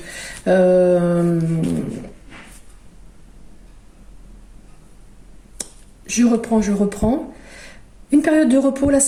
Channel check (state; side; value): identical; both; correlation 1.00